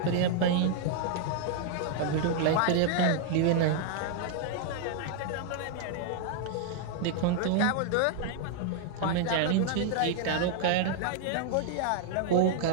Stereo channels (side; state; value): both; different; correlation 0.00